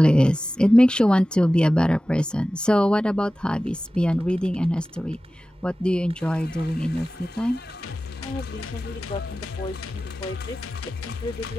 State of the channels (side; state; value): both; normal; correlation 0.96